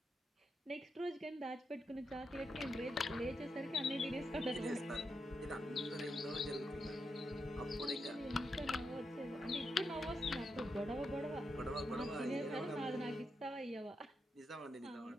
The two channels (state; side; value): normal; both; correlation 0.84